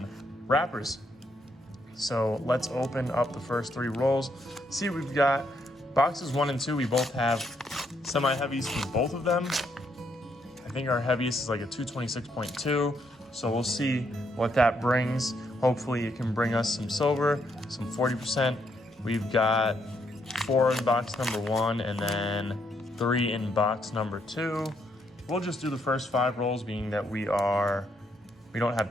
wrappers. So let's open up the first 3 rolls. See what we've got. Boxes 1 and 2, we both have semi-heavies from both of them. I think our heaviest is like a 226.2. So we'll see what that brings. Hopefully it can bring us some silver, some 40%. We've got 4 in box number 1 and then 3 in box number 2. We'll just do the first 5 rolls, being that we don't have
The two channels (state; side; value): normal; both; correlation 0.75